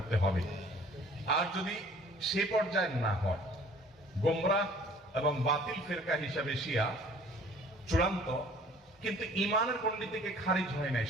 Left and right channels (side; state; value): both; normal; correlation 0.52